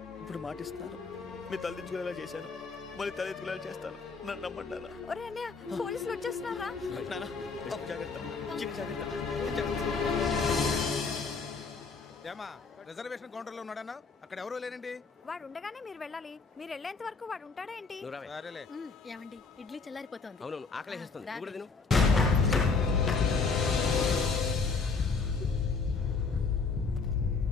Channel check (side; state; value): right; quieter; 4.5 dB